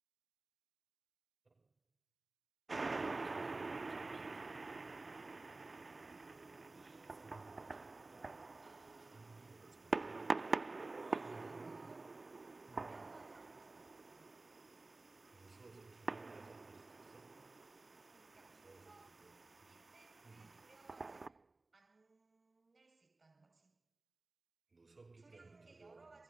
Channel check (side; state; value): left; quieter; 3.2 dB